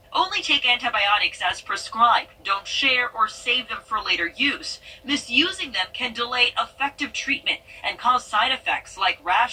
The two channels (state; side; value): identical; both; correlation 1.00